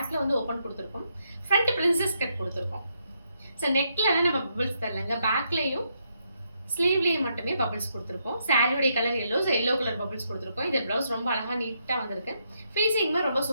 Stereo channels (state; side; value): inverted; both; correlation -0.78